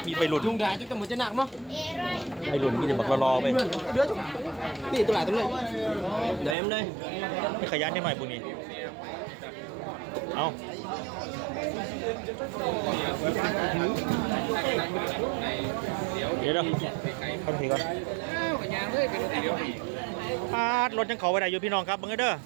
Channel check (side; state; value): left; drops out; at 6.6 s